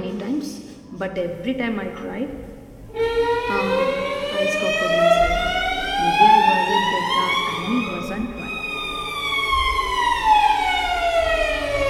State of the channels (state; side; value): identical; both; correlation 1.00